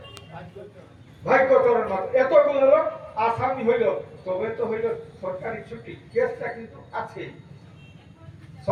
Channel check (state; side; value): identical; both; correlation 1.00